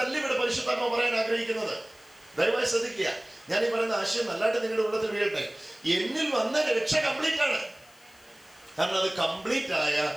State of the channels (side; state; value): left; noise; hiss, 28 dB below the sound